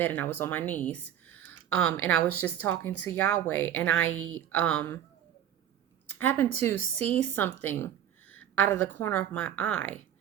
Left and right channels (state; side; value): quieter; left; 10.5 dB